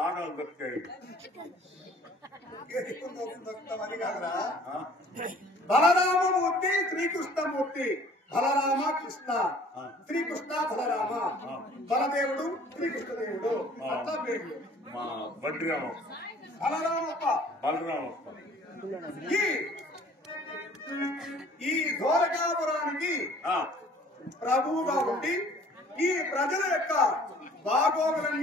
ఆడలు దొరికాయి అని కాదురా. బలరామమూర్తి శ్రీకృష్ణమూర్తి. బలరామ కృష్ణ, శ్రీకృష్ణ బలరామ, బలదేవుడు శ్రీకృష్ణదేవుడు అట్లా పేర్లు. మా బండి రామప్ప, బలరామప్ప, బలరామప్ప. ఈ ద్వారకాపురానికి ప్రభువుగా ఉండి ఈ ప్రజల యొక్క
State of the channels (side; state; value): both; normal; correlation 0.53